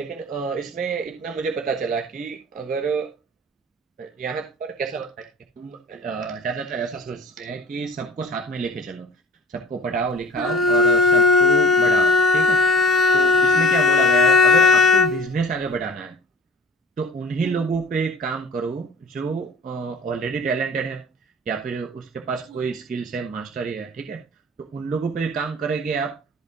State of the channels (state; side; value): normal; both; correlation 0.46